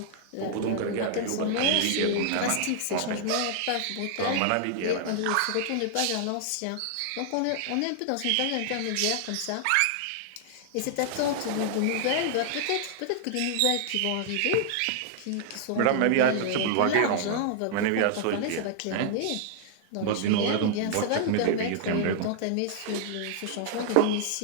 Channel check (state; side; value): different; both; correlation -0.01